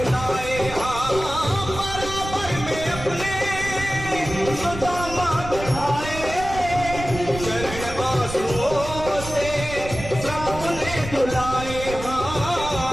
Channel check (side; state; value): right; noise; rumble, 10 dB below the sound